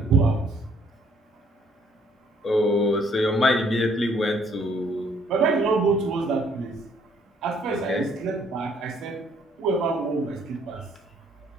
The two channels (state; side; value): normal; both; correlation 0.64